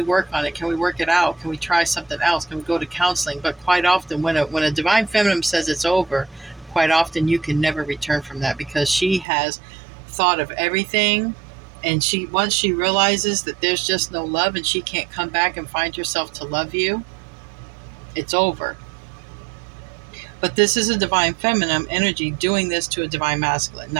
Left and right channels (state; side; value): drops out; left; at 9.2 s